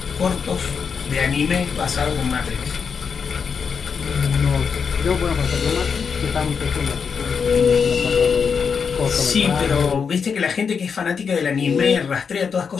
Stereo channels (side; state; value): right; quieter; 6.1 dB